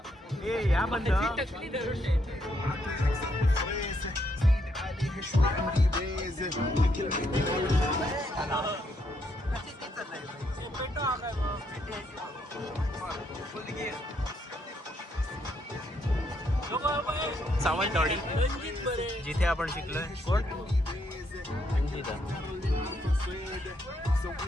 ए या बंद. सावंतवाडी जिथे आपण शिकलोय. कोण? रंजिता.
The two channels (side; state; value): both; normal; correlation 0.75